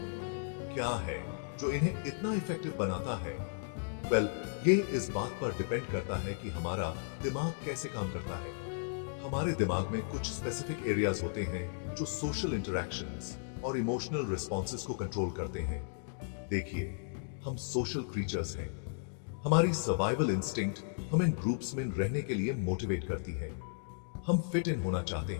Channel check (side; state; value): right; silent; digital silence